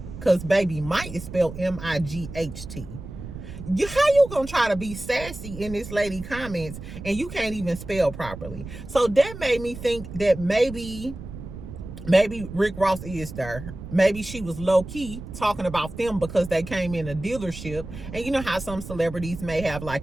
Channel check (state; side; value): noise; right; rumble, 11 dB below the sound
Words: because baby, might is spelled M-I-G-H-T. How you gonna try to be sassy in this lady comments and you can't even spell properly? So that made me think that maybe Rick Ross is there. Maybe she was low-key talking about them because they came in a dealership. And you know how some celebrities may have